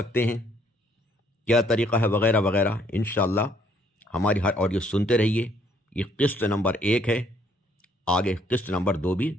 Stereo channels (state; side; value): normal; both; correlation 0.65